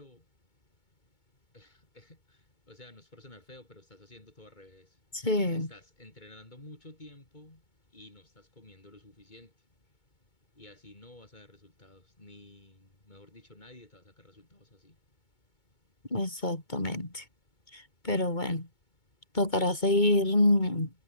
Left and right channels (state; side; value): late; right; 2.2 ms